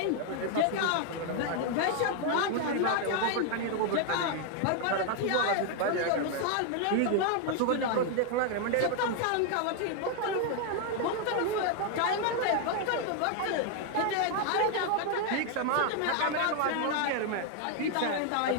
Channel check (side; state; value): both; different; correlation 0.00